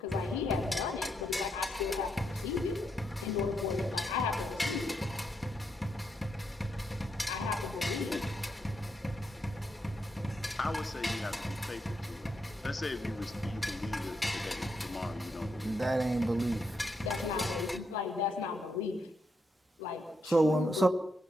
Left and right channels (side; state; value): both; normal; correlation 0.80